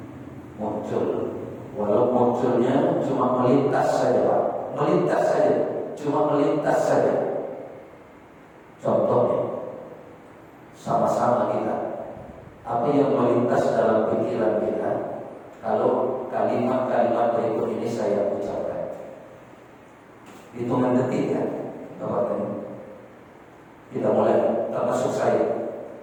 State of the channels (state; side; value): identical; both; correlation 1.00